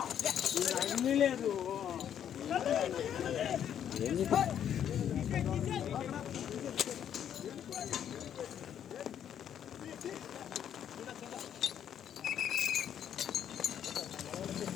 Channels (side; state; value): right; quieter; 9.5 dB